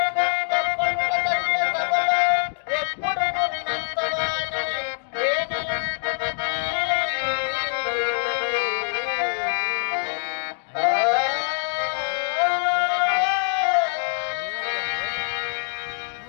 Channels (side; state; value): right; silent; digital silence